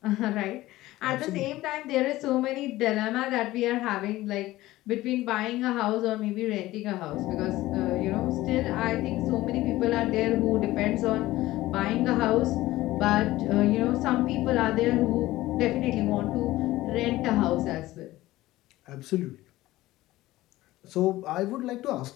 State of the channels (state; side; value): quieter; right; 17.0 dB